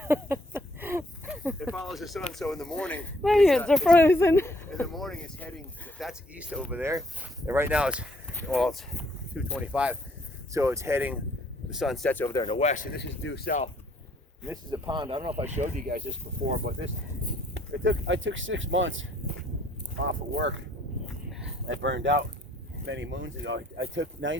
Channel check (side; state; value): both; normal; correlation 0.64